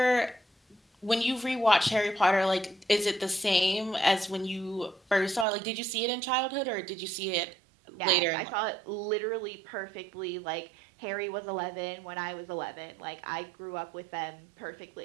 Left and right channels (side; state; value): left; drops out; at 5.5 s